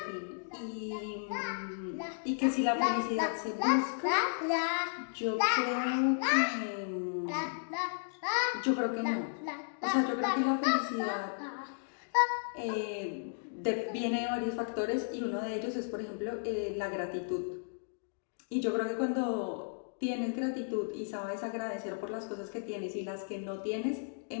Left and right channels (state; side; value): silent; right; digital silence